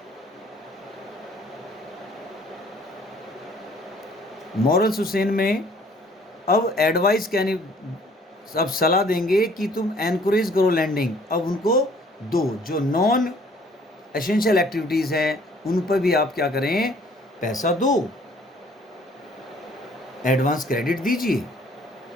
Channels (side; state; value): both; normal; correlation 0.58